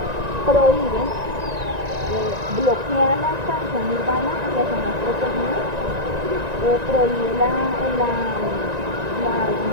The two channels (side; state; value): left; late; 1.9 ms